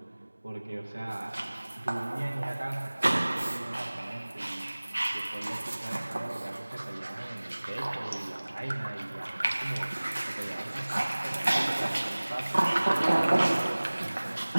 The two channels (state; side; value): inverted; both; correlation -1.00